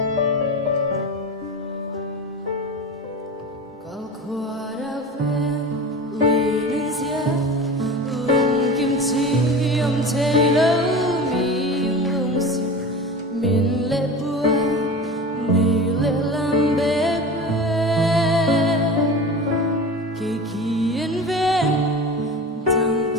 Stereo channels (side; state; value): both; normal; correlation 0.32